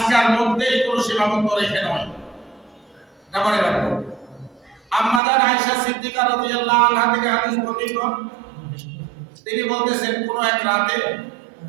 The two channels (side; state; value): left; drops out; at 5.2 s